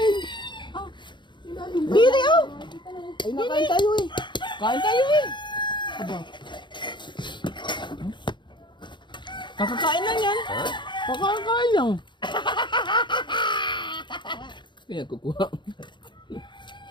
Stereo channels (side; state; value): right; late; 0.23 ms